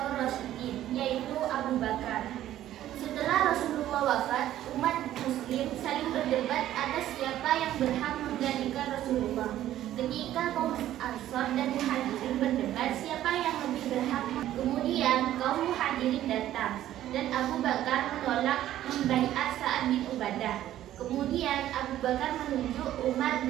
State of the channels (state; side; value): quieter; left; 12.9 dB